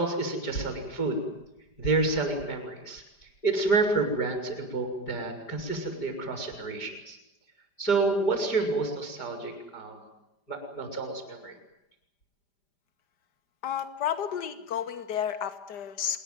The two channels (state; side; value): late; right; 5.0 ms